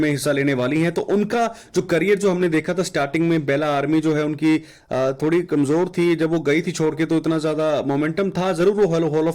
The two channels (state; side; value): identical; both; correlation 1.00